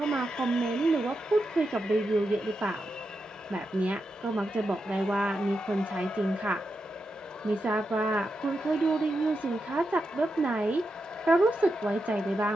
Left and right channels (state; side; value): normal; both; correlation 0.87